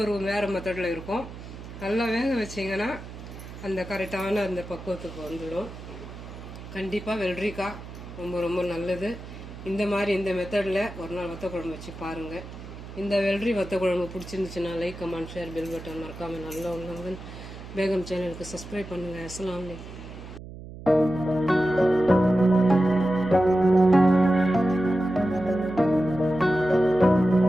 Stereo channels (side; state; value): right; noise; hum, 13 dB below the sound